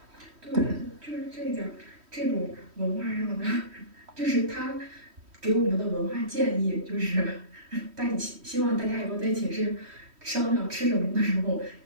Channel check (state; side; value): late; left; 3.1 ms